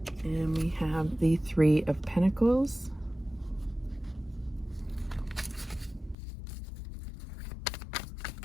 And we have the Three of Pentacles.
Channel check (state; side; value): drops out; right; at 6.2 s